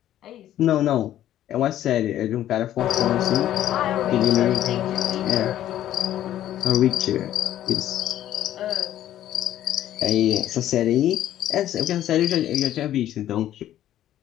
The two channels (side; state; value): right; quieter; 12.3 dB